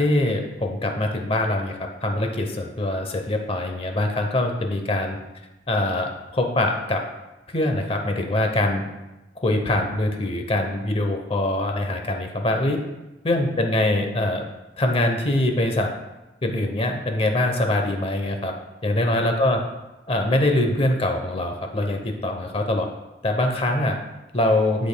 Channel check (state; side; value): normal; both; correlation 0.56